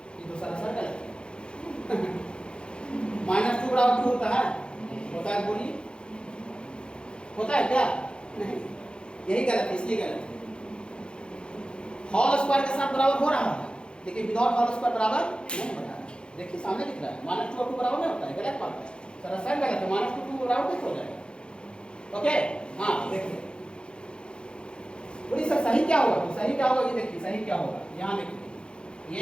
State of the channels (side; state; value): right; late; 0.053 ms